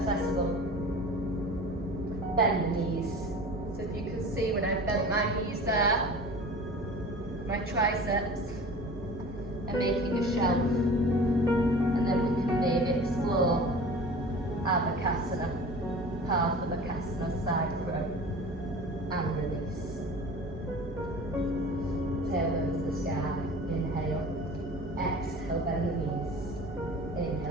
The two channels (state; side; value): normal; both; correlation 0.39